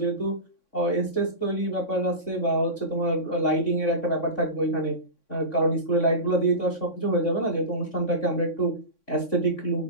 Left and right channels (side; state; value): right; late; 3.6 ms